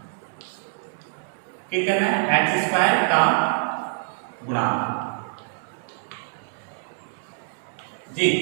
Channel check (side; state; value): left; silent; 62 dB below the other